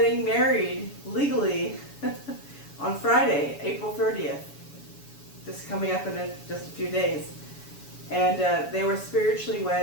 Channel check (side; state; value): right; late; 7.1 ms